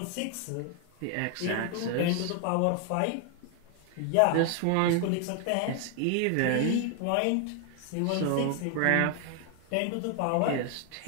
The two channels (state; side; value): different; both; correlation 0.00